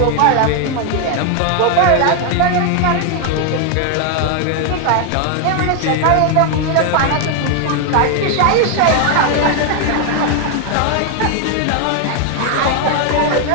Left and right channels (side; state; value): both; different; correlation 0.00